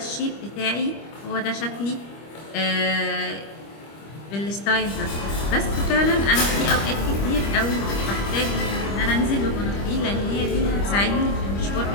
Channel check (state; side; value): late; right; 25 ms